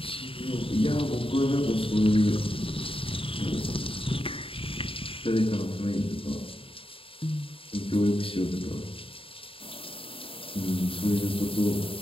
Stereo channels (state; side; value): late; right; 0.26 ms